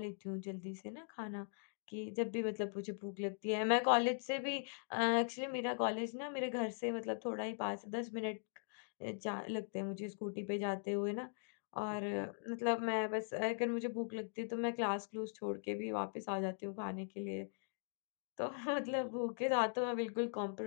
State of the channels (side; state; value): right; silent; digital silence